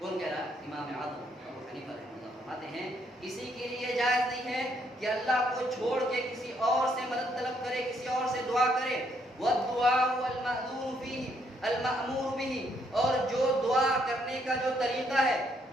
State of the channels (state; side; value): normal; both; correlation 0.72